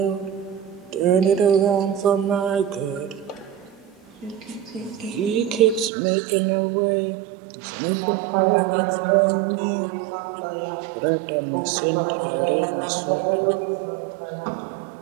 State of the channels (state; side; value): drops out; left; at 5.9 s